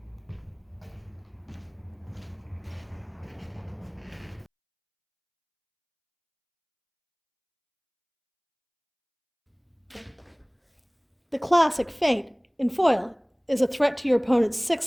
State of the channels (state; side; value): identical; both; correlation 1.00